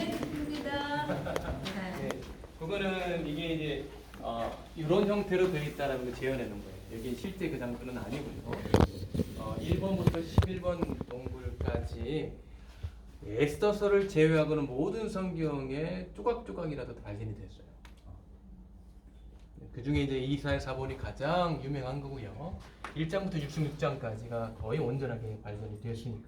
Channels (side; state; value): both; identical; correlation 1.00